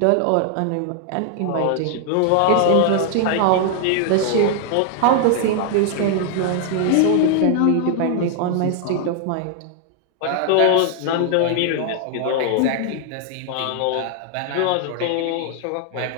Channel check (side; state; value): both; different; correlation 0.00